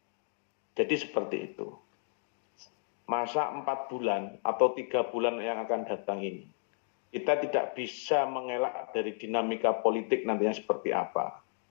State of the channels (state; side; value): silent; right; digital silence